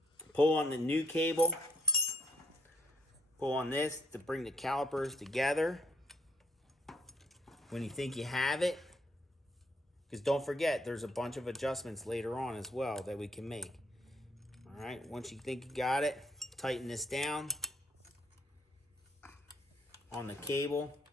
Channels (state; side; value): normal; both; correlation 0.66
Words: Pull on the new cable. Pull on this to bring the calipers together. When you think you have it, because don't forget, there's a bunch of adjustments later on as well that we can make. All right, once you think you got it, tighten this down on the cable.